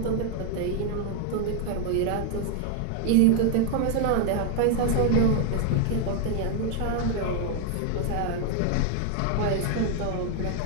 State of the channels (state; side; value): different; both; correlation 0.00